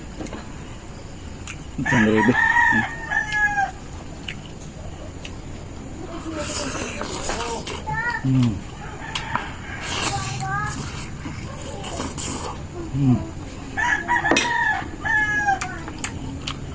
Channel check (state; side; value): identical; both; correlation 1.00